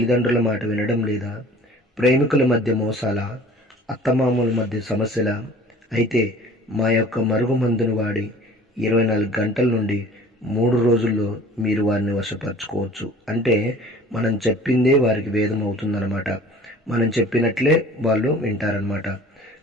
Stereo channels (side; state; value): both; normal; correlation 0.47